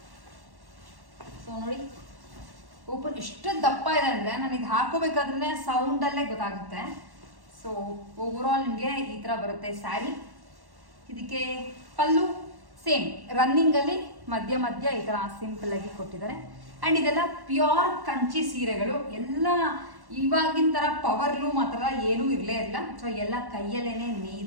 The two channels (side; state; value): left; late; 1.1 ms